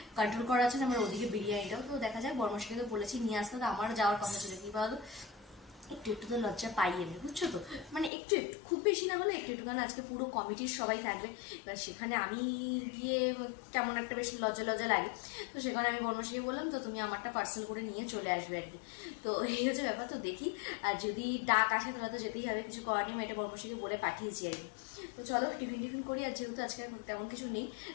কন্ট্রোল করা আছে না। আমার ওদিকে বিরিয়ানিটাও তো দেখা যায়, বর্মশাকে তো বলেছি নিয়ে আসতে, তো আমারও যাওয়ার কথা ছিল। কি বলতো, একটু তো লজ্জা পাই আমি, বুঝছো তো, মানে একটু খুব বেশি না হলে একটু, কারণ আজকে পুরো কমিটির সবাই থাকবে। এবার সেখানে আমি গিয়ে কেমন একটা বেশি লজ্জা লাগে। তো সেখানে আমি বর্মশাকে বললাম, তো তুমি আমারটা পার্সেল করে নিয়ে চলে আসবে আর কি। তো এই হচ্ছে ব্যাপার। তো দেখি, আর যদি ডাক আসে তাহলে তো যেতেই হবে, কিছু করার নেই। এটা বর্মশাকে বলে পাঠিয়েছি আর কি। তো চলো টিফিন করি। আর যেহেতু আজকে তেমন কিছু নেই,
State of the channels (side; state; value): right; drops out; at 8.1 s